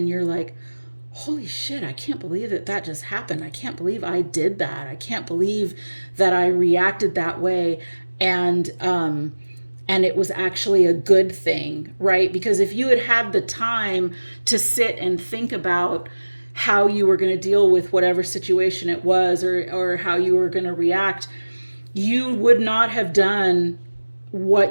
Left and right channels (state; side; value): inverted; both; correlation -1.00